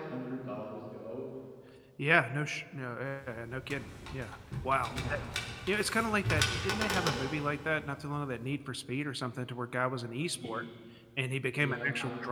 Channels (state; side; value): identical; both; correlation 1.00